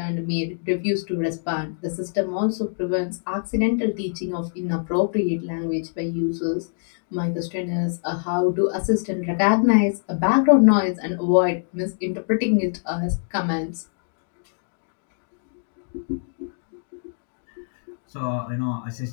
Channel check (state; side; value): silent; right; digital silence